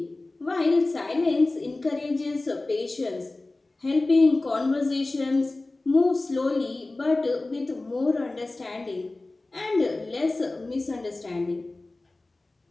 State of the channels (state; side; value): quieter; right; 3.0 dB